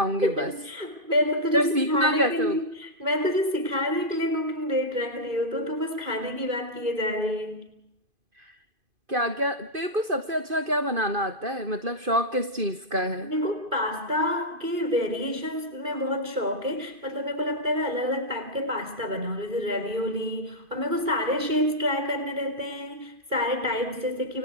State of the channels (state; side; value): late; left; 2.5 ms